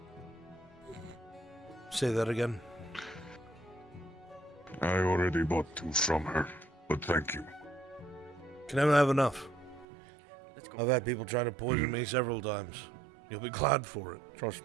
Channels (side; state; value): left; drops out; at 9.9 s